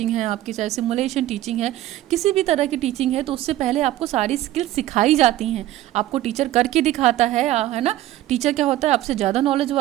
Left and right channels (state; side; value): quieter; left; 14.8 dB